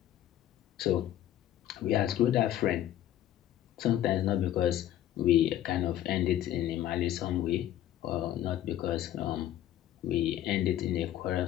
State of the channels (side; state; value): right; quieter; 12.4 dB